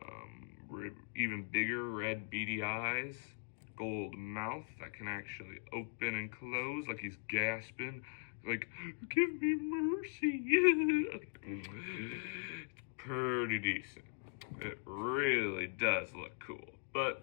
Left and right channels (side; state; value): right; silent; digital silence